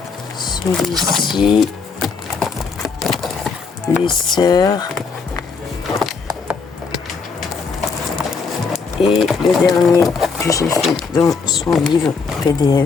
celui-ci, les sœurs, et le dernier que j'ai fait dans son livre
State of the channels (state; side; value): quieter; right; 4.9 dB